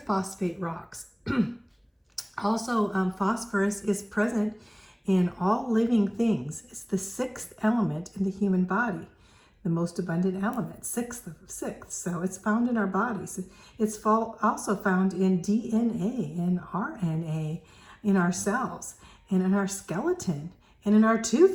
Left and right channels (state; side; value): identical; both; correlation 1.00